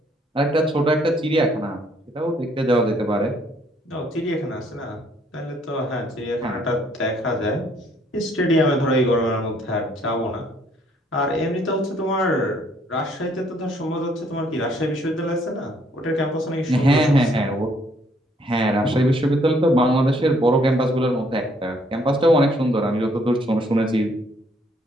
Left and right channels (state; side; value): normal; both; correlation 0.66